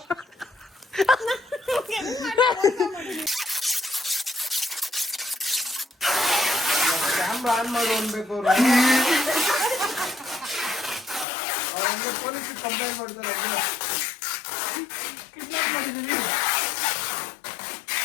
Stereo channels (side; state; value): right; drops out; at 11.2 s